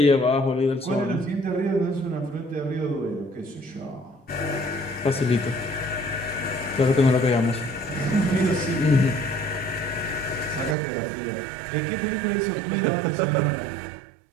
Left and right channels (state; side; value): drops out; left; at 10.8 s